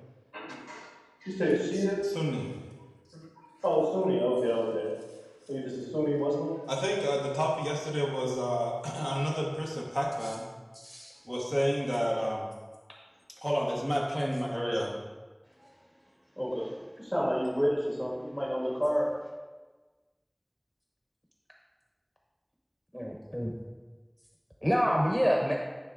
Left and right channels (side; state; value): both; identical; correlation 1.00